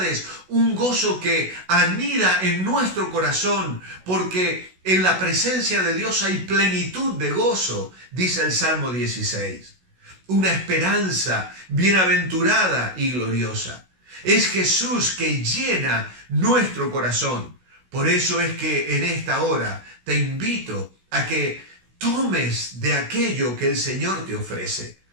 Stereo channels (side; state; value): left; late; 16 ms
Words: un gozo que anida en nuestro corazón, porque en la presencia de Dios hay plenitud de gozo, dice el Salmo 16. Una esperanza bienaventurada y gloriosa. Es Jesús que llena nuestro corazón. Por eso es que en esta hora te invito a que tomes de aquello que el Señor te ofrece.